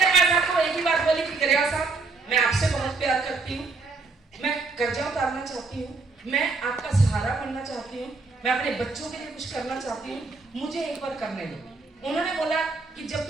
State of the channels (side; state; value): left; quieter; 3.9 dB